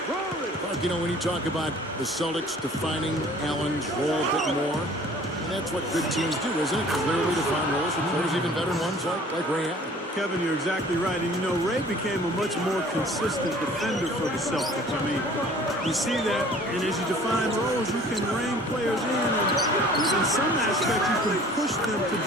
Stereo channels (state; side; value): normal; both; correlation 0.50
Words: But, you know, when you talk about the Celtics defining Allen's role a bit more, and that's what good teams do, isn't it? Clearly defined roles with players, even veteran ones like Ray Allen. Kevin, you're exactly right. And, you know, Ray became a much more consistent defender for the Celtics. I mean, you see that, and as you define roles, you can rein players in, and in some aspects, you can push them to